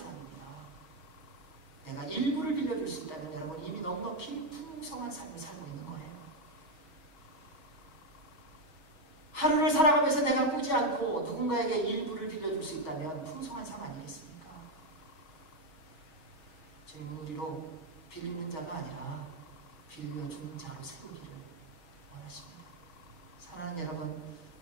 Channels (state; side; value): late; right; 6.2 ms